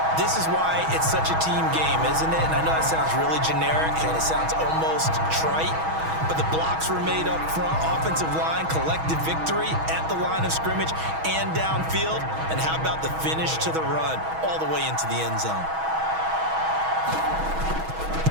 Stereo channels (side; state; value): left; late; 6.2 ms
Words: This is why it's such a team game, isn't it? And I know it sounds really generic and it sounds almost trite, but the blocks were made up front, offensive line, collective victory at the line of scrimmage and downfield. And how about the finish to the run all the way into the end zone?